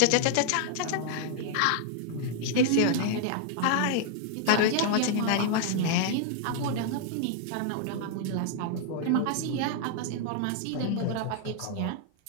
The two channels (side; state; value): both; different; correlation 0.00